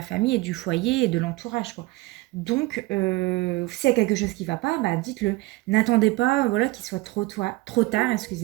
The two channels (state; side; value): quieter; left; 20.6 dB